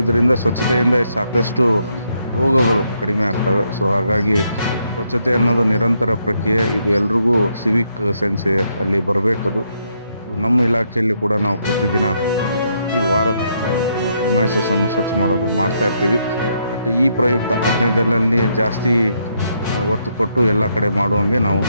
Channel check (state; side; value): inverted; both; correlation -0.76